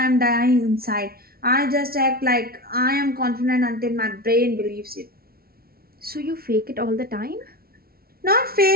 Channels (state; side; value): late; left; 0.44 ms